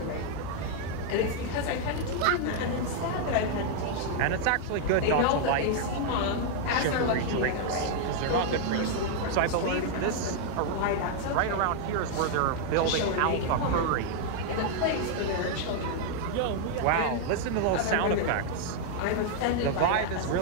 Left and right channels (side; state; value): both; different; correlation 0.00